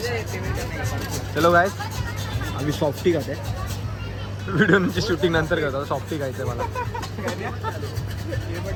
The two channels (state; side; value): identical; both; correlation 1.00